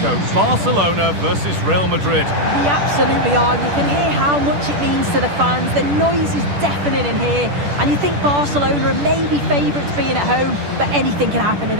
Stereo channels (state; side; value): late; left; 10 ms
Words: Barcelona versus Real Madrid. We absolutely are. You can hear how much it means to the fans. The noise is deafening in here, and you think Barcelona are maybe favourites being at home, but anything can happen in